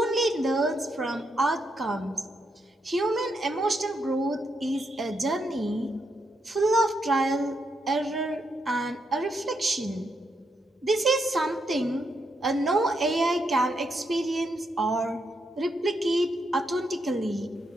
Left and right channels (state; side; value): normal; both; correlation 0.80